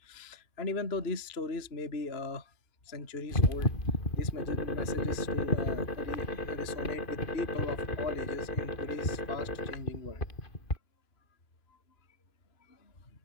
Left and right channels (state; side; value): late; right; 2.9 ms